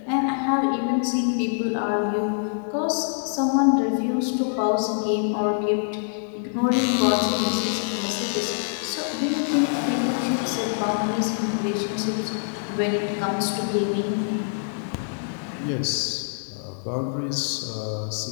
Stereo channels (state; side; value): silent; right; digital silence